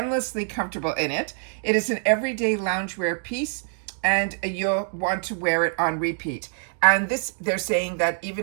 comfortable in it. It is an everyday loungewear piece, and you'll want to wear it on repeat. And this, they're saying that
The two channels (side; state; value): left; silent; digital silence